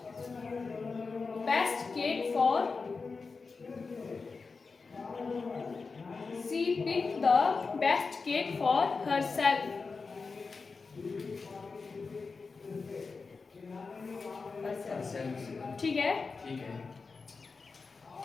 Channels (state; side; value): quieter; right; 4.5 dB